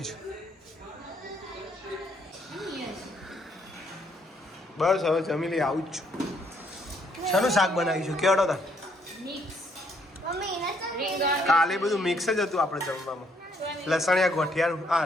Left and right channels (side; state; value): both; normal; correlation 0.69